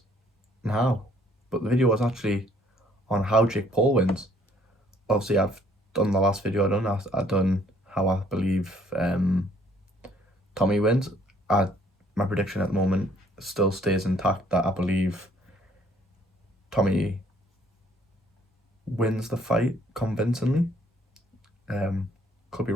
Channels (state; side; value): normal; both; correlation 0.62